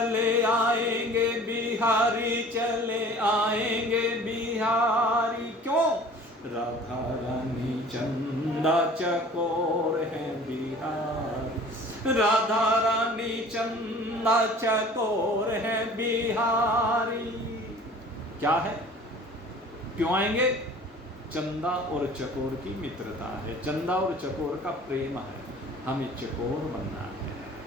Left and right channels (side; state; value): both; normal; correlation 0.46